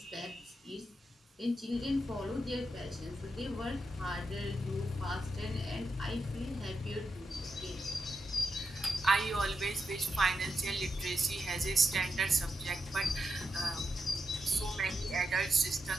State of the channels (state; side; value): normal; both; correlation 0.86